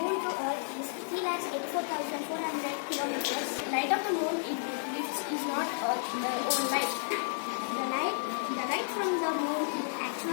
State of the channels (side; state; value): right; silent; digital silence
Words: to Earth is 3,84,400 kilometers. The light of the moon is not Earth's own light. The light from the moon is